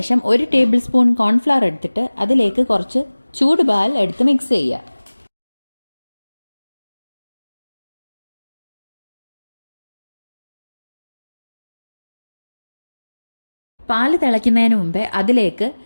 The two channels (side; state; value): both; inverted; correlation -1.00